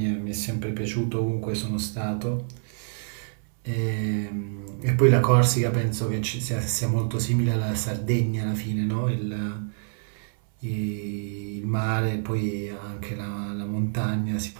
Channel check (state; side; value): silent; left; 60 dB below the other